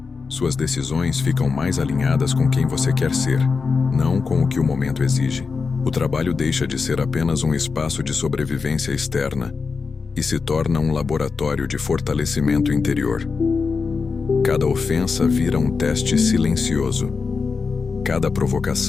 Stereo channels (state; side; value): quieter; right; 4.9 dB